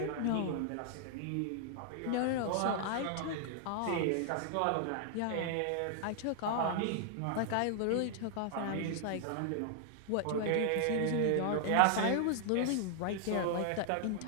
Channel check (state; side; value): different; both; correlation 0.00